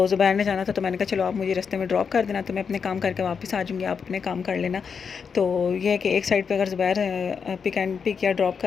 ज़ुबैर ने जाना था तो मैंने कहा चलो आप मुझे रास्ते में ड्रॉप कर देना, तो मैं अपने काम करके वापस आ जाऊँगी, आप अपने काम कर लेना। तो ये है कि एक साइड पे अगर ज़ुबैर पिक या ड्रॉप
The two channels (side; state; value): right; quieter; 6.2 dB